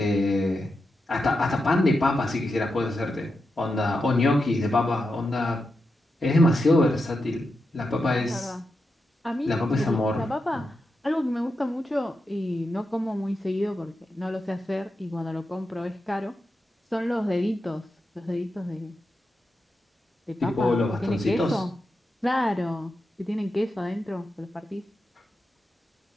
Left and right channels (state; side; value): normal; both; correlation 0.88